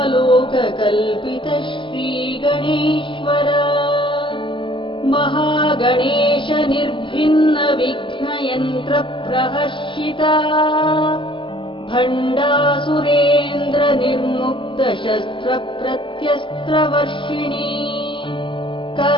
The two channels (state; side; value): late; right; 0.24 ms